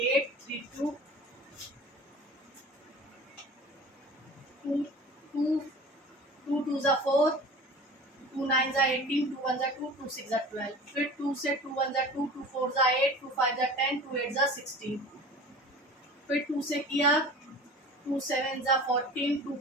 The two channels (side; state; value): both; normal; correlation 0.39